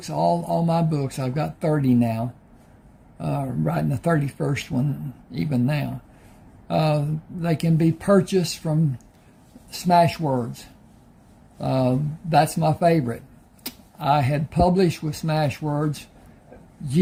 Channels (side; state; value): both; identical; correlation 1.00